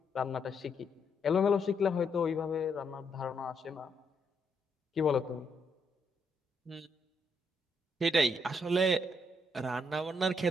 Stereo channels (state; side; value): normal; both; correlation 0.75